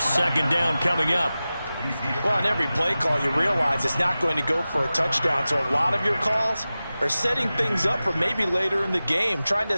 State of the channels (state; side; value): inverted; both; correlation -0.95